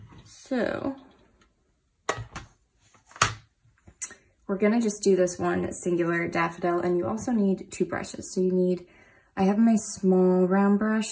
So we're gonna just do this one singular daffodil, and you also need two brushes. So you need, I have my small round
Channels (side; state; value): both; identical; correlation 1.00